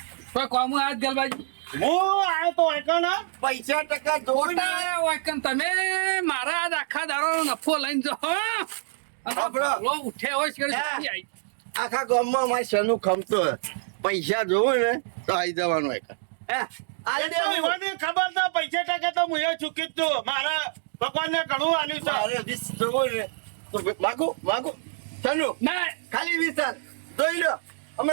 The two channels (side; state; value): left; silent; digital silence